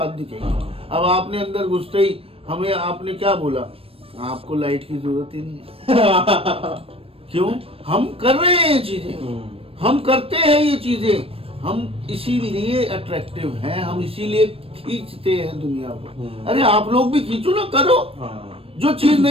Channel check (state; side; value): late; left; 0.28 ms